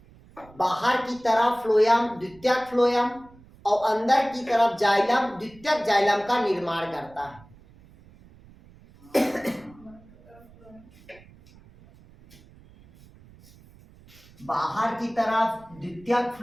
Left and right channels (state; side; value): noise; right; rumble, 25 dB below the sound